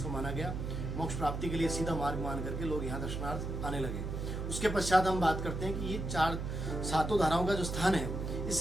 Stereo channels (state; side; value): noise; right; hum, 4 dB below the sound